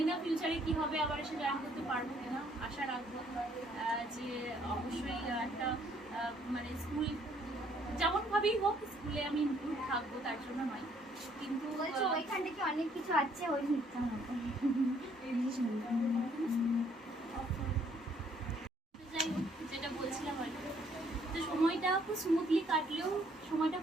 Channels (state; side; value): normal; both; correlation 0.65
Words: না ফিউচারে কী হবে, আবার এসে জয়েন করতে পারবো কিনা, আশা রাখবো যে অবশ্যই একটা মানে স্কুল যেমনভাবেই হোক স্কুলে আমি ইনক্লুড থাকবো, তার জন্য নয়। কিন্তু ওইখান থেকে অনেক কিছু আছে, ওই মিথ্যা মতো। যাই হোক, যেটা বলছিলাম আর কি, তো সময়টা খুব স্মুথলি কাটলেও সময়টা